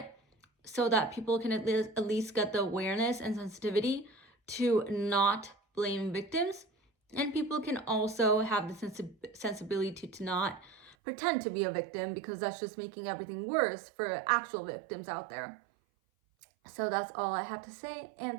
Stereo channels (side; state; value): left; drops out; at 11.0 s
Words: so that people can at least get the awareness and sensitivity to not blame victims. And people can also have the sensibility to not pretend to be a victim, because that's just making everything worse for actual victims out there. So that's all I have to say,